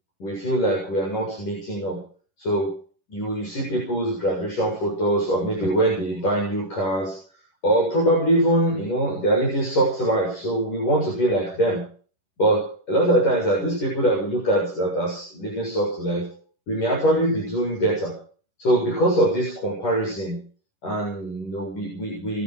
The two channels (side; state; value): right; late; 11 ms